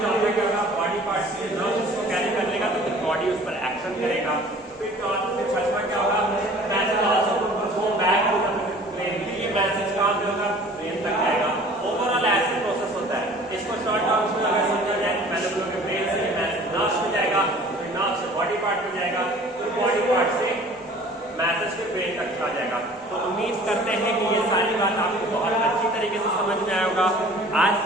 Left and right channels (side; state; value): both; normal; correlation 0.48